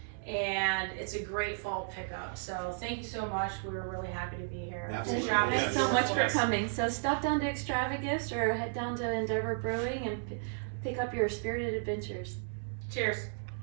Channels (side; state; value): left; silent; 55 dB below the other